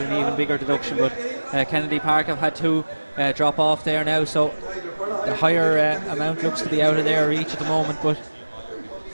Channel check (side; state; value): both; inverted; correlation -1.00